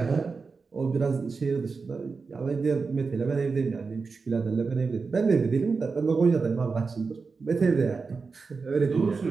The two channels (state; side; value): quieter; left; 4.6 dB